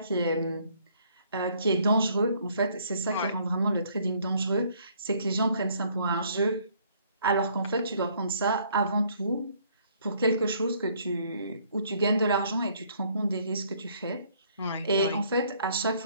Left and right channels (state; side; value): inverted; both; correlation -0.63